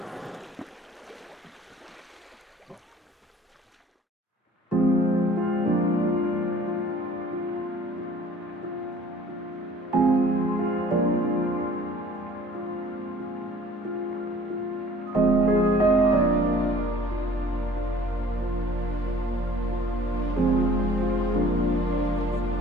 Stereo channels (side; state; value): both; normal; correlation 0.52